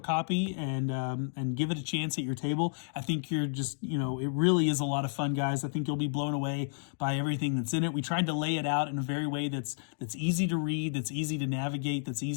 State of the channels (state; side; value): silent; right; digital silence